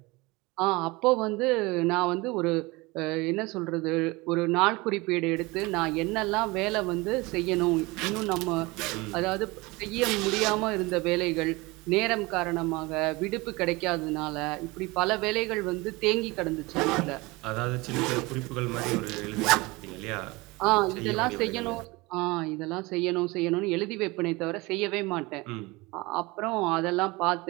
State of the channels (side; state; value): left; quieter; 23.4 dB